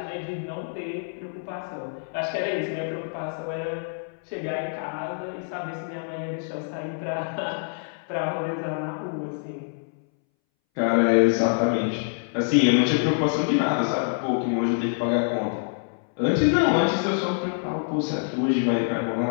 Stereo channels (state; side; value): silent; right; 61 dB below the other